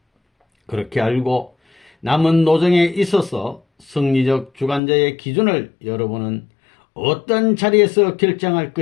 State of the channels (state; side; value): drops out; right; at 4.8 s